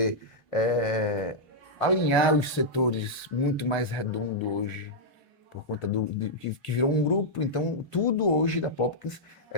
alinhar os setores muito mais redondo hoje, por conta que virou um grupo. Então, tudo hoje da Popkins,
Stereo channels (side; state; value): both; normal; correlation -0.07